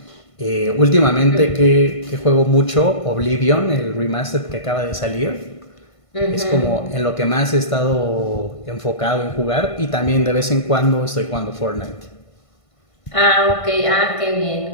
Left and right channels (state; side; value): late; right; 1.5 ms